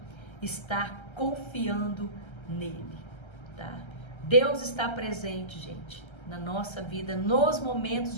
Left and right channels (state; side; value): late; right; 1.3 ms